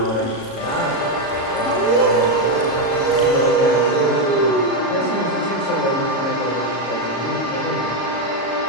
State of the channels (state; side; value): late; right; 35 ms